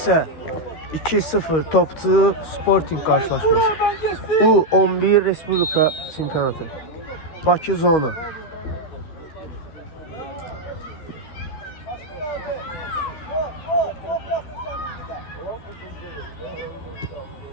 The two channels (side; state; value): right; late; 13 ms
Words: 2-0 topçu Sporting qarşılaşması. U11 Respublika çempionatı. Bakı zona.